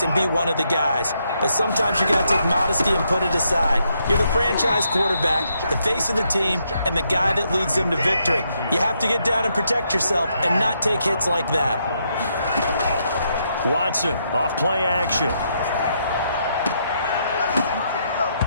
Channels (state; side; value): inverted; both; correlation -0.77